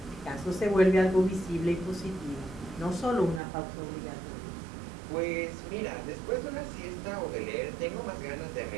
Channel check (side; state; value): left; drops out; at 3.4 s